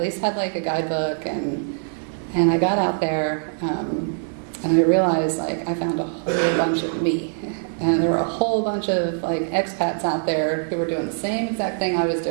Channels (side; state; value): left; silent; digital silence